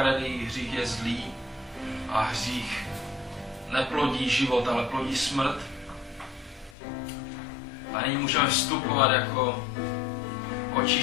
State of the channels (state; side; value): drops out; right; at 6.8 s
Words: hřích je zlý a hřích neplodí život, ale plodí smrt. A nyní můžeme vstupovat jako